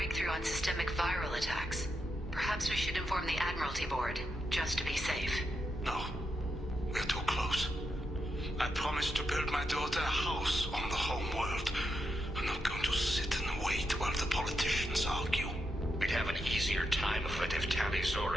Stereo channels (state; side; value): normal; both; correlation 0.84